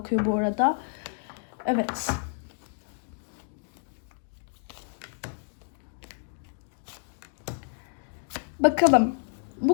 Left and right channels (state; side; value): silent; right; digital silence